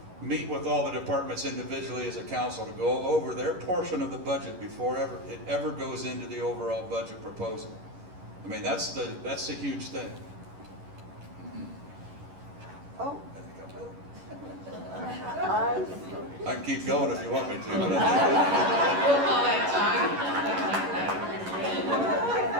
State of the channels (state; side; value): late; left; 11 ms